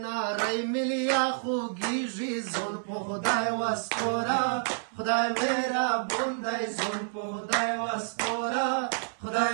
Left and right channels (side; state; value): left; silent; 59 dB below the other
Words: نارۍ ملیا خوږیږي ځون په خدای وسپوره خدای مهربان دی ځون په خدای وسپوره خدای